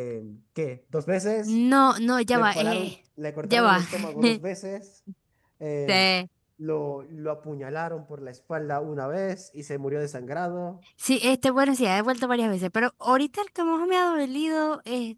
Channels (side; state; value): both; identical; correlation 1.00